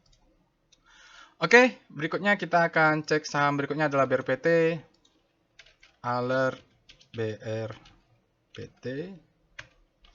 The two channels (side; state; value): both; identical; correlation 1.00